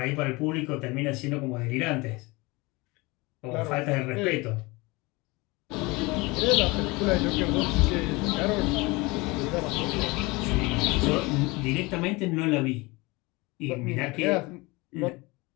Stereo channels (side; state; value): right; quieter; 24.1 dB